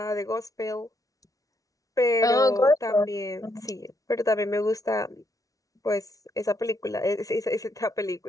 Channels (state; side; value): late; right; 0.17 ms